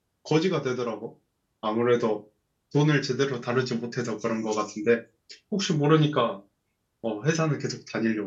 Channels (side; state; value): both; identical; correlation 1.00